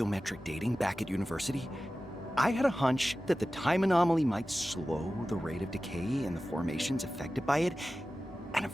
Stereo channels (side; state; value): both; normal; correlation 0.95